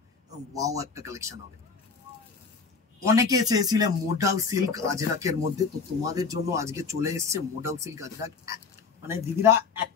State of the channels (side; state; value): right; quieter; 5.1 dB